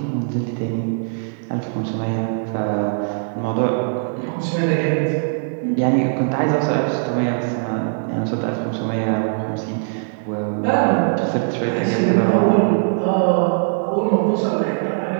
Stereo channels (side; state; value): left; silent; digital silence